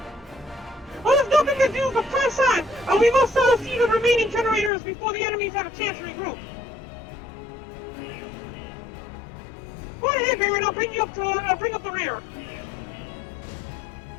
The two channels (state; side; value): drops out; right; at 4.7 s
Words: Well, there's nothing to do but press on, and we must all see the remaining generators before the enemies have a chance to regroup. Go ahead, Barren, I'll bring you up to, bring up the rear.